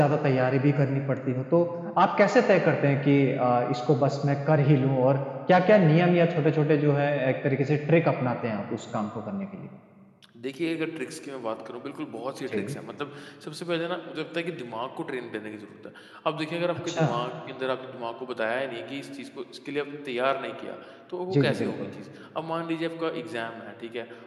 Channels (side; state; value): both; identical; correlation 1.00